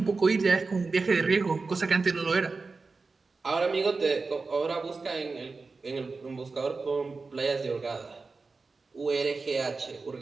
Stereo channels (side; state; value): left; quieter; 4.1 dB